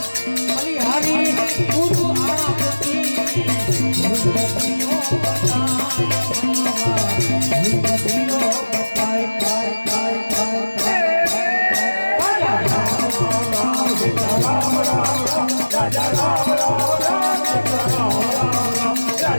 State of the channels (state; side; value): inverted; both; correlation -1.00